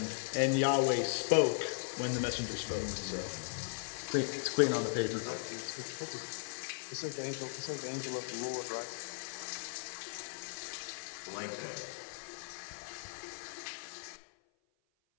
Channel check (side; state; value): right; silent; 53 dB below the other